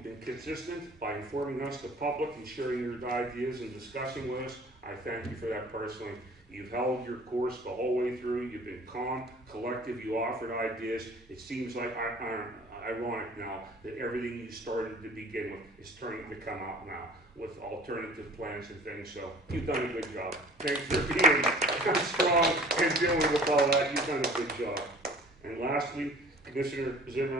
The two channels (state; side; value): normal; both; correlation 0.48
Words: been consistent by informing us, the public, and sharing your ideas and discussing with us I thank you for that personally. You've held your course the whole way through. You've been calm, collective. You offered ideas. It seems like ironic now that everything you started to begin with is turning to come out now with alternative plans and things. So you've done a good job. Thanks for being strong and dealing with all that. You've done a good job. And lastly, Commissioner